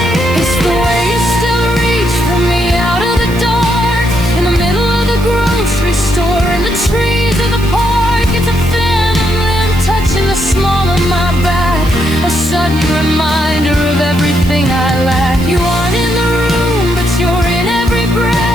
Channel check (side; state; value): right; noise; hiss, 18 dB below the sound